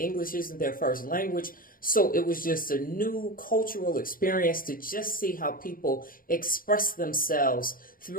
isn't their first language. So it was just a new cultural experience to just see how people express themselves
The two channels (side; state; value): right; late; 0.41 ms